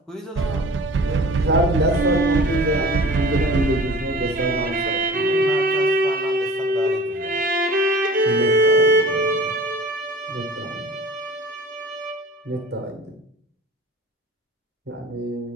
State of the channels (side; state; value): both; normal; correlation 0.42